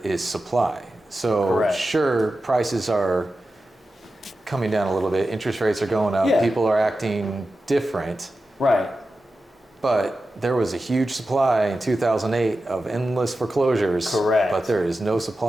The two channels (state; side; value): normal; both; correlation 0.92